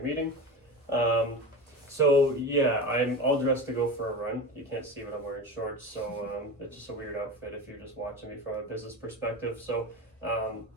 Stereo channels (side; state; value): both; normal; correlation 0.26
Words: meeting. So yeah, I'm all dressed to go for a run. You can't see, but I'm wearing shorts, so it's just a weird outfit if you're just watching me from a business perspective. So